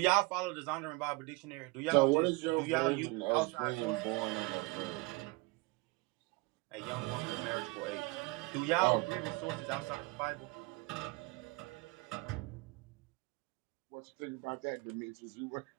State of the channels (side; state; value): left; quieter; 25.3 dB